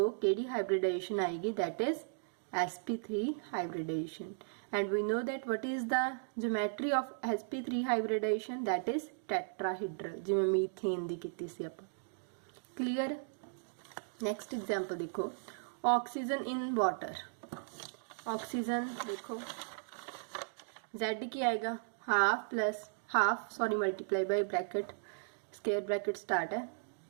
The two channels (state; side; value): silent; left; digital silence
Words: केड़ी हाइब्रिडाइजेशन आएगी? That is sp3 hybridization, and we know that what is the geometry of sp3 hybridization? that is tetrahedral, जिवें मीथेन दी कीती सी आपां। क्लियर। नेक्स्ट एग्जांपल देखो, ऑक्सीजन इन वाटर। ऑक्सीजन देखो Z की आएगा multiply by bracket square bracket start है।